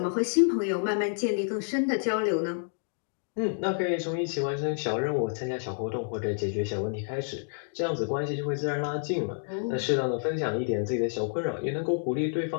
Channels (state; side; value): silent; right; digital silence